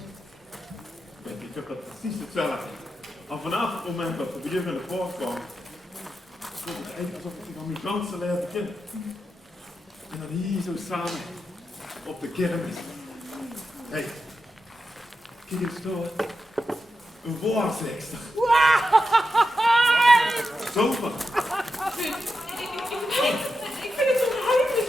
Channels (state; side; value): normal; both; correlation 0.89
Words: Ik heb dat precies hetzelfde. En vanaf het moment dat we weer in de poort kwamen, voelde het eigenlijk alsof ik aan mijn dansen leerde kennen. En dan hier zo samen op de kermis. Hé, kijk eens door. Een waarzegster. Super. Ik vind het onheimelijk